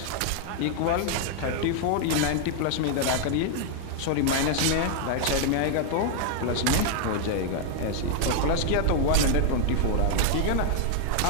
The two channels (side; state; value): both; different; correlation 0.00